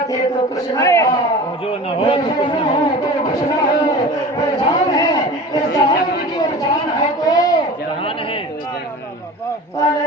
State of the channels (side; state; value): both; normal; correlation 0.36